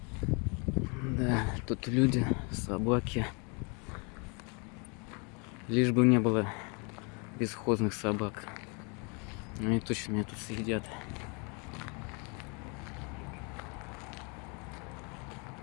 Да, тут люди, собаки. Лишь бы не было бесхозных собак. Они точно меня тут съедят.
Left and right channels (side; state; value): right; quieter; 33.1 dB